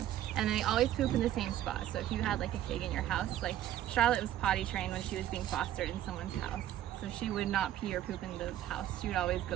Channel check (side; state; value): left; quieter; 12.3 dB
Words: and they always poop in the same spot. So if you had like a pig in your house, like Charlotte was potty trained when she was being fostered in someone's house, so she would not pee or poop in the house. She would always